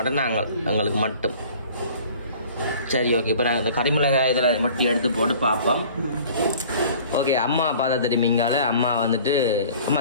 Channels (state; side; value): inverted; both; correlation -0.48